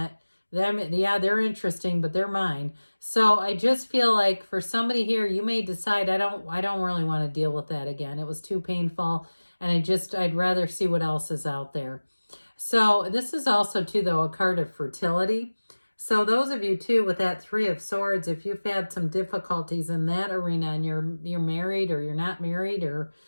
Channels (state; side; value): inverted; both; correlation -1.00